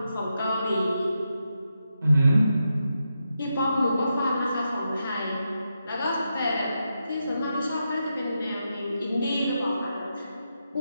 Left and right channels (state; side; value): inverted; both; correlation -0.86